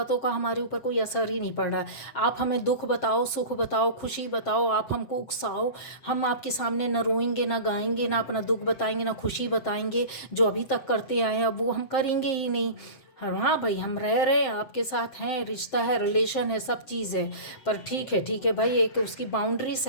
का हमारे ऊपर कोई असर ही नहीं पड़ रहा। आप हमें दुख बताओ, सुख बताओ, खुशी बताओ, आप हमको उकसाओ, हम आपके सामने ना रोएंगे, ना गाएंगे, ना अपना दुख बताएंगे, ना खुशी बताएंगे। जो अभी तक करते आए हैं अब वो हम करेंगे ही नहीं। हाँ भाई, हम रह रहे हैं, आपके साथ हैं, रिश्ता है, रिलेशन है, सब चीज़ है, पर ठीक है भाई, एक उसकी बाउंड्री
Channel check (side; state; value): right; late; 7.6 ms